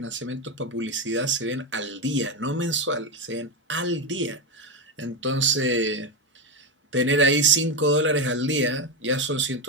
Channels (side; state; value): both; normal; correlation 0.10